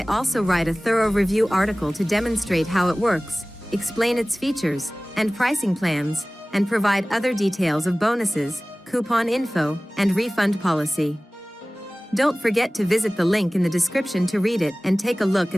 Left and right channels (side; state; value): both; normal; correlation 0.98